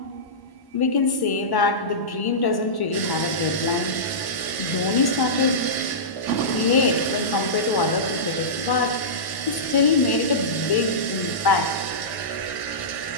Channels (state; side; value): late; right; 1.1 ms